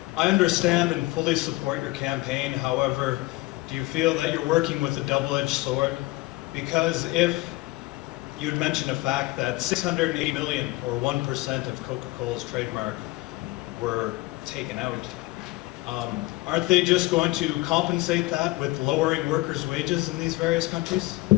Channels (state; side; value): quieter; right; 20.9 dB